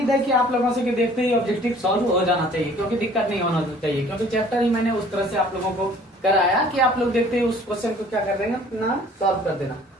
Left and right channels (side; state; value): both; normal; correlation 0.53